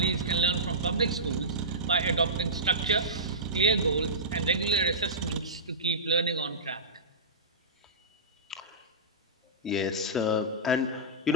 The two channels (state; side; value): normal; both; correlation -0.17